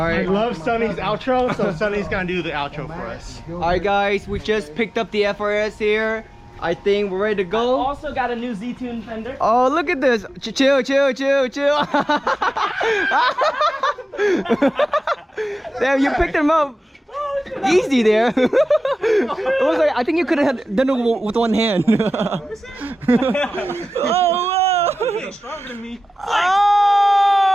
love Sonny's outro, so Sonny's gonna do the outro for us. Alright, guys, we just picked up the FRS here. I think we're ready to go. Also got a new Z-Tune fender. Oh, look at this. Chill. Damn, you picked him up easy there. It was like, I think you could have done it with one hand. Oh, whoa. You're stronger than me.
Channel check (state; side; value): normal; both; correlation 0.95